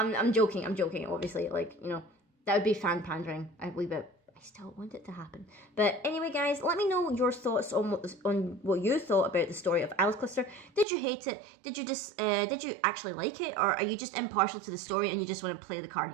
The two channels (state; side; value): drops out; left; at 10.9 s